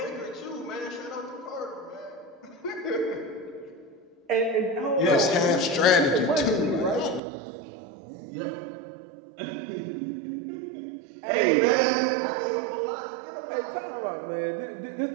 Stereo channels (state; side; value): drops out; left; at 7.2 s